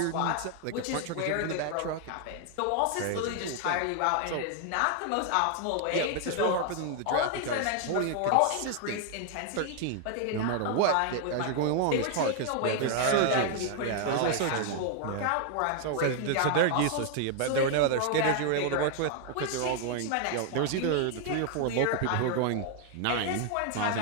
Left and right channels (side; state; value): both; different; correlation 0.00